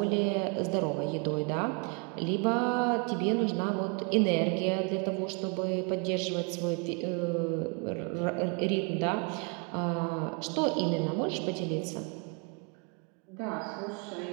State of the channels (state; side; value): quieter; left; 34.0 dB